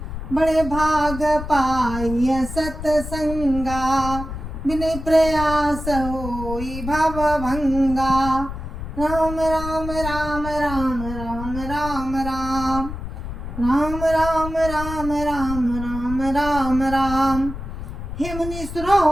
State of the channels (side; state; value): left; noise; rumble, 8 dB below the sound